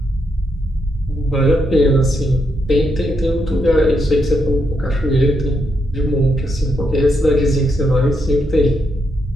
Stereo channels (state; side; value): normal; both; correlation 0.80